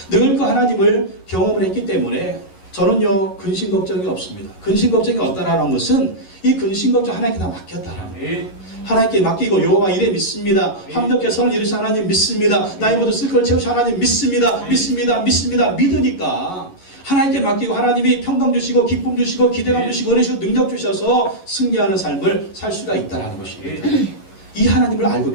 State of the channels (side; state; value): right; late; 11 ms